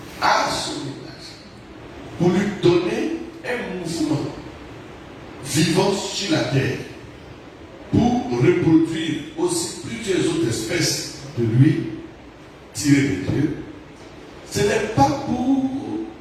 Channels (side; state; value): both; identical; correlation 1.00